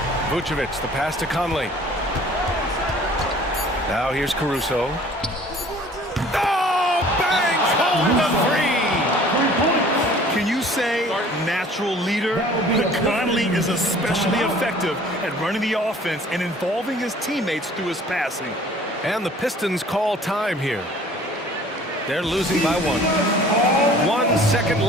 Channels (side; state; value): both; normal; correlation 0.51